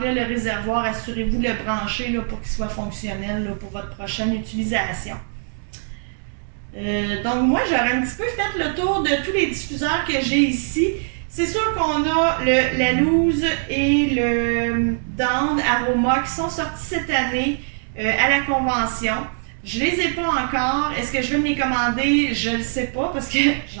le réservoir, assurez-vous de le brancher là, pour qu'il soit fonctionnel là, pour votre prochaine utilisation. Donc, moi, j'aurais un petit peu fait le tour de tous les diffuseurs que j'ai ici. C'est sûr qu'on a la Loose et le Dawn Aroma qui sont sortis cette année à la convention. Je les ai pas encore. Est-ce que je vais me les commander? Je ne le sais pas parce que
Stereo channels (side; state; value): left; silent; digital silence